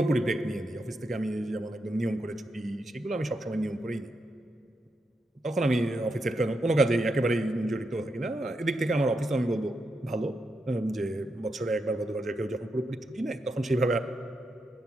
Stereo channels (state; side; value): normal; both; correlation 0.84